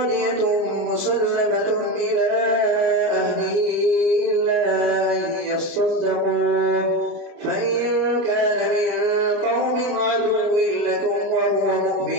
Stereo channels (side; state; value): left; late; 29 ms